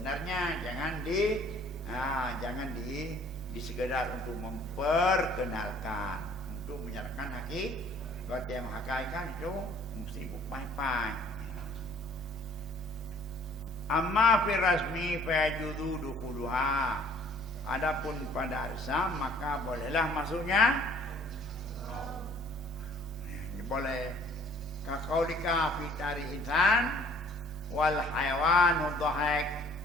jangan di sekedar untuk memperkenalkan, untuk menyatakan hakikat yang hakikat itu mesti bupai-pai. Amma fi rasmi fa yajuzu dukhuluha. Adapun pada arsam maka bolehlah masuknya. Boleh. Kaqaulika fi tari insan wal hayawanu dhahik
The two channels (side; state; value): both; normal; correlation 0.56